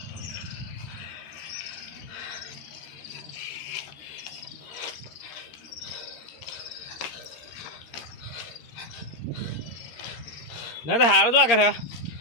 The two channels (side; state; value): right; late; 13 ms